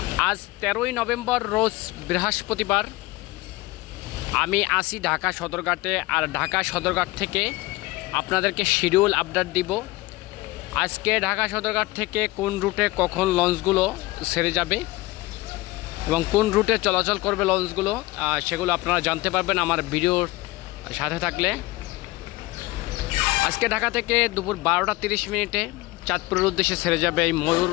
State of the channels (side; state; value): right; quieter; 20.5 dB